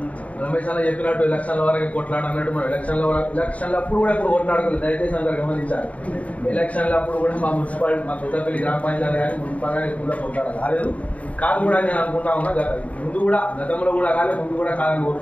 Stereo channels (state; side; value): late; right; 0.068 ms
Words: రమేష్ అన్న చెప్పినట్టు ఎలక్షన్ల వరకు కొట్లాడ అన్నట్టు మనం ఎలక్షన్లప్పుడు కూడా ఇప్పుడు కొట్లాడుకోలేదు, దయచేసి అందరూ గమనించాలి. ఎలక్షన్లప్పుడు కూడా మా మున్సిపాలిటీ, మా కొత్తపల్లి గ్రామ పంచాయతీ కానీ మున్సిపల్ కానీ కూడా కొట్లాడ కాలేదు. కాదు కూడా నేను అనుకుంటా ఉన్నా, ముందు కూడా గతంలో కూడా కాలేదు, ముందు కూడా కాదని